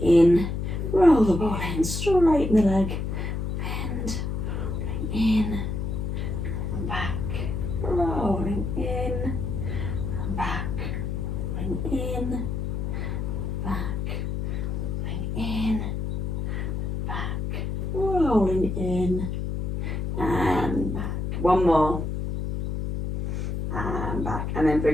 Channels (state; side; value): noise; left; hum, 2 dB below the sound